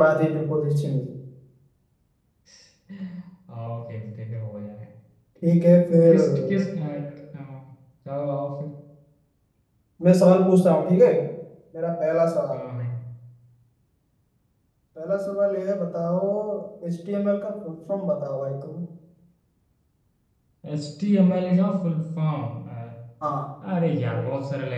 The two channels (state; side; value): identical; both; correlation 1.00